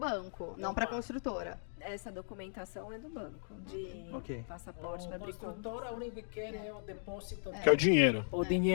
não para a construtora. Essa documentação é do banco, de Ok. passaporte para A abrir conta. construtora, a única que quer é o depósito, Que é o dinheiro. o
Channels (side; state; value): right; silent; digital silence